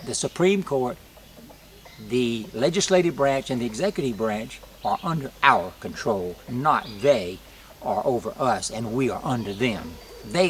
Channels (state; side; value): identical; both; correlation 1.00